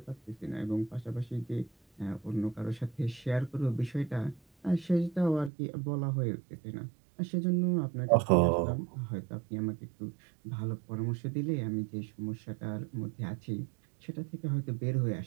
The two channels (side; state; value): left; drops out; at 5.5 s